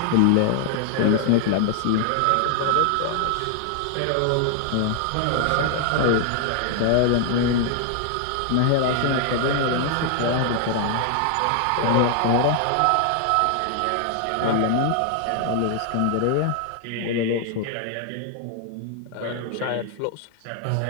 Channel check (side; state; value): both; different; correlation 0.00